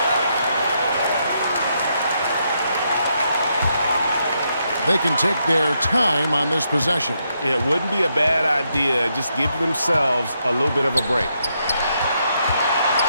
They can take their time on this possession. It wouldn't be a bad idea. Just give themselves a little bit of a break.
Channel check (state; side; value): inverted; both; correlation -0.79